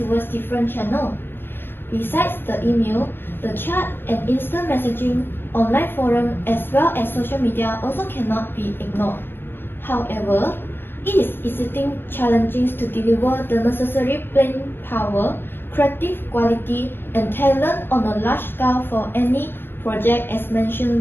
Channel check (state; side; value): late; right; 0.10 ms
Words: different channels. Besides the email, the chat and instant messaging, online forum, as well as social media also cannot be ignored. However, it is exceedingly challenging to deliver the necessary brain power, creative quality, and talent on a large scale for any project as